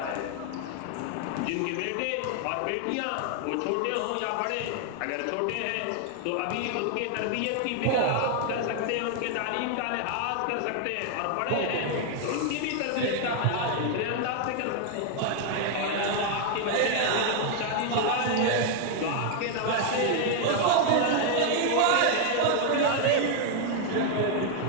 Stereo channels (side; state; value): both; different; correlation 0.00